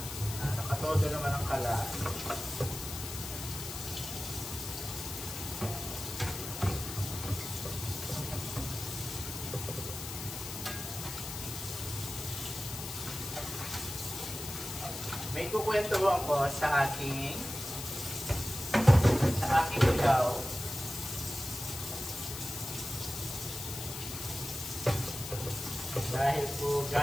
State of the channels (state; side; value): noise; left; hiss, 8 dB below the sound